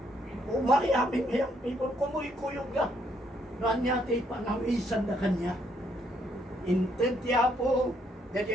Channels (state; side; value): normal; both; correlation 0.71